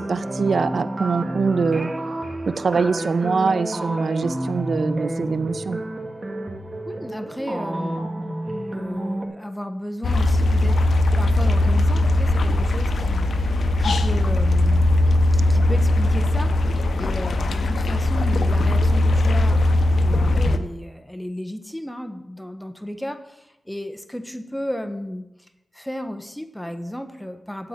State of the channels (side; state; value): both; normal; correlation 0.88